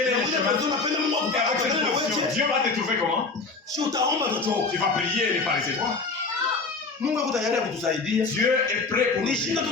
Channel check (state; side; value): quieter; right; 4.1 dB